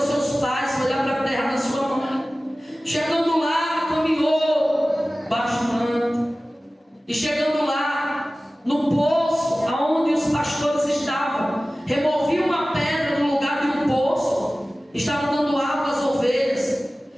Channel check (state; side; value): normal; both; correlation 0.97